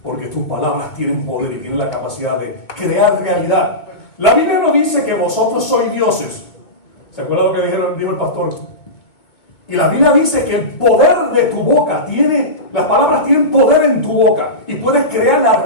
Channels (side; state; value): right; late; 2.2 ms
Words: porque tus palabras tienen poder y tienen la capacidad de crear realidad. La Biblia no dice que vosotros sois dioses. ¿Se acuerdan lo que dijo el pastor? Y la Biblia dice que el poder de tu boca las palabras tienen poder en tu boca y puedes crear